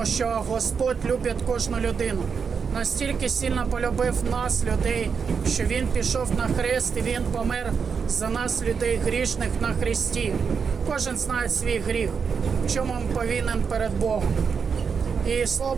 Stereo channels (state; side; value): quieter; left; 6.0 dB